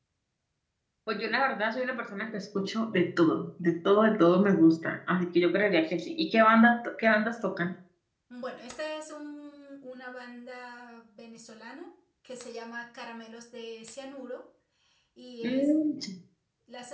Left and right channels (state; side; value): identical; both; correlation 1.00